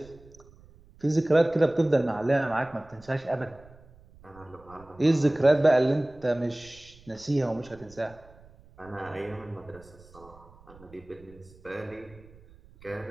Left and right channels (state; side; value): noise; right; rumble, 24 dB below the sound